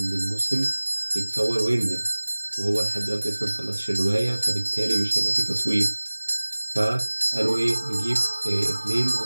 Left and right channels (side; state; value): both; inverted; correlation -1.00